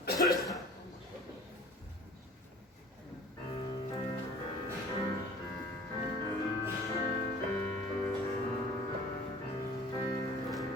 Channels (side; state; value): both; normal; correlation 0.46